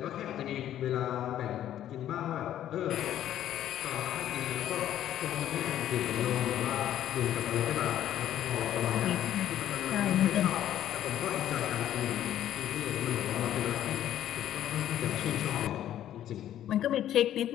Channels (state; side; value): quieter; right; 11.7 dB